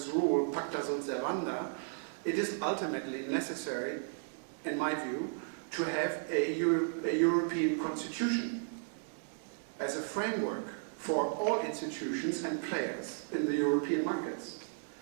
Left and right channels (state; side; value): silent; left; digital silence